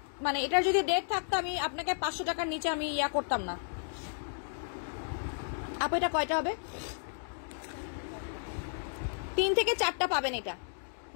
মানে এটার যদি ডেট থাকতো আমি আপনাকে 500 টাকার নিচে আমি ইয়া করতাম না। আপু এটা কয়টা হবে? 3 থেকে 4টা পাবেন, এটা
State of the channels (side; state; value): right; silent; digital silence